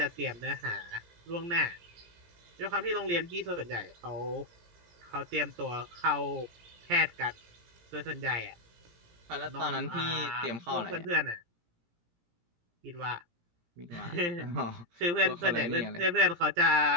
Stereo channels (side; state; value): left; late; 17 ms